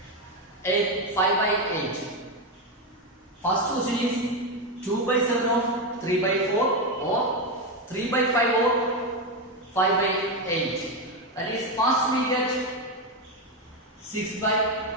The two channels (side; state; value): both; normal; correlation 0.10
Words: 8, 5 by 8. First question is 2 by 7 of 3 by 4 or 3 by 5 or 5 by 8. That is, first we get 6